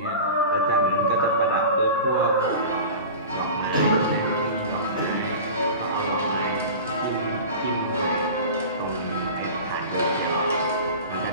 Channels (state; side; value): inverted; both; correlation -0.34